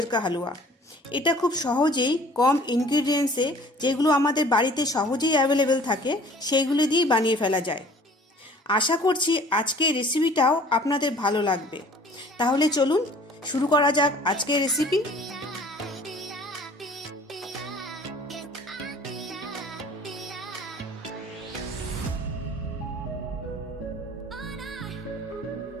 কা হালুয়া। এটা খুব সহজেই কম ইনগ্রিডিয়েন্টসে, যেগুলো আমাদের বাড়িতে সহজেই অ্যাভেলেবেল থাকে, সেইগুলো দিয়েই বানিয়ে ফেলা যায়। আশা করছি আজকের রেসিপিটাও আপনাদের ভালো লাগবে। তাহলে চলুন শুরু করা যাক আজকের রেসিপি।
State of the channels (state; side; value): normal; both; correlation 0.50